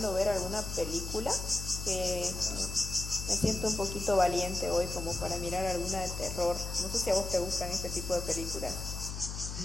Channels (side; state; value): left; noise; hum, 6 dB below the sound